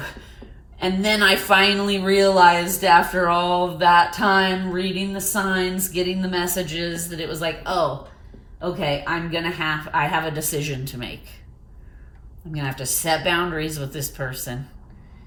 then I finally realized after all of that time, reading the signs, getting the messages, that it was like, oh, okay, I have a decision to make. I'm going to have to set boundaries with this person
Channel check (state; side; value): identical; both; correlation 1.00